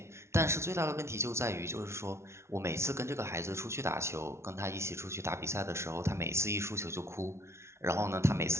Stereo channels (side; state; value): left; late; 0.13 ms